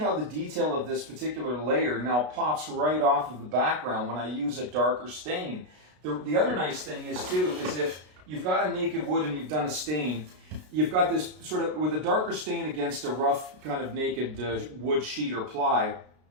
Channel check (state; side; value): late; left; 33 ms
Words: the detail of this particular layer now pops right off of the background when I use a darker stain. The other nice thing is too, is if you've got a naked wood and you've done a stain, you've got this sort of, with a darker stain against a rough kind of naked wood sheet or ply,